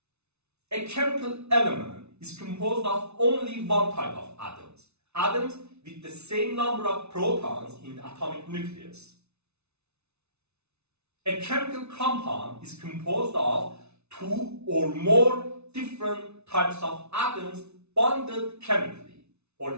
A chemical element is composed of only one type of atoms, atoms with the same number of protons in the atomic nucleus. A chemical compound is composed of two or more different types of atoms bonded chemically, or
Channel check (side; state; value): left; late; 0.81 ms